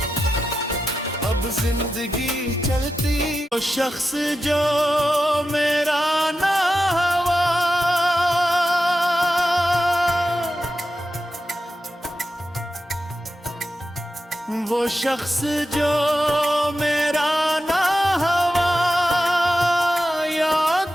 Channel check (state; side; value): normal; both; correlation 0.90